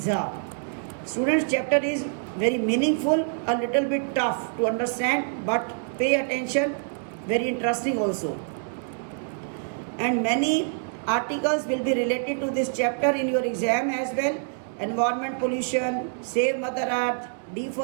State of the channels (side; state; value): left; silent; digital silence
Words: Students, chapter is very meaningful, a little bit tough to understand, but pay attention, very interesting also. And many articles will be related to this chapter in your exam as well. Environment pollution, save Mother Earth,